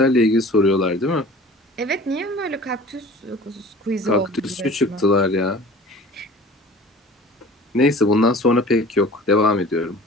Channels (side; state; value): both; normal; correlation 0.43